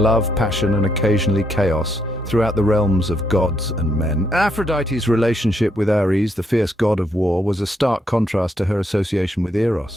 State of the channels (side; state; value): both; normal; correlation 0.75